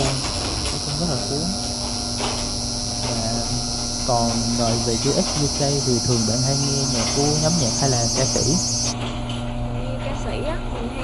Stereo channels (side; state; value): both; identical; correlation 1.00